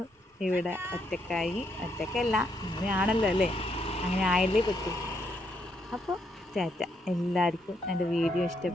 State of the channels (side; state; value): both; normal; correlation 0.76